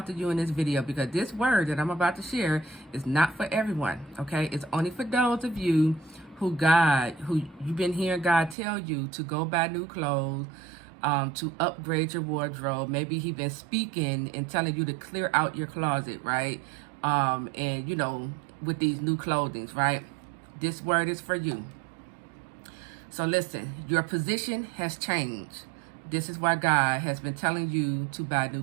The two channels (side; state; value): left; drops out; at 8.6 s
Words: to you in this video because this word that I'm about to share is not for everyone, okay? It's only for those of you who you've been hearing God tell you to go buy new clothes, to upgrade your wardrobe. Maybe He's been speaking and telling you to clear out your closet, right? And with these new clothings, right? This word is for you. So listen, your position has changed. This is why God has been telling you to buy new